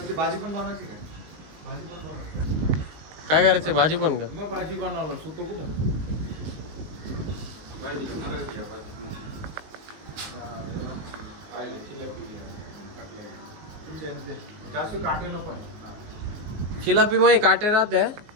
भाजी पण बनवायची काय करायचं? भाजी पण का? मग भाजी बनवलं सुतो कुठं? शिलापी मध्ये काटे राहते,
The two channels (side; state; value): left; late; 19 ms